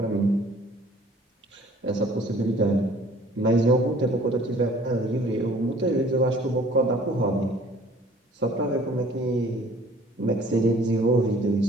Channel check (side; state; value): both; normal; correlation 0.53